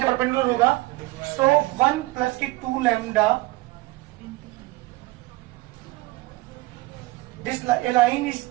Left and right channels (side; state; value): left; quieter; 20.8 dB